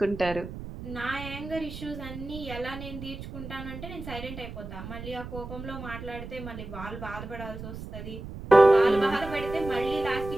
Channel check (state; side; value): noise; right; rumble, 10 dB below the sound